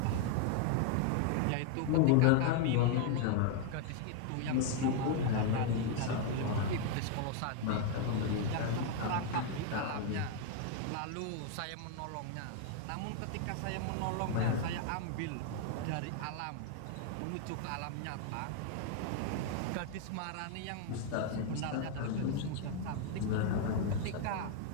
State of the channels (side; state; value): both; different; correlation 0.00